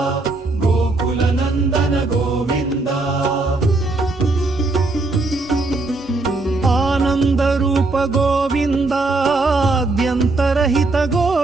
గోకుల నందన గోవింద ఆనంద రూప గోవింద ఆద్యంతరహిత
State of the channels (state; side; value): quieter; left; 3.3 dB